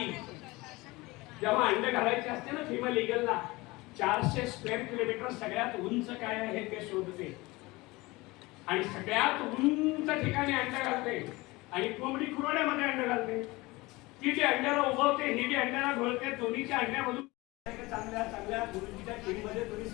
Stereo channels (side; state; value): right; quieter; 22.0 dB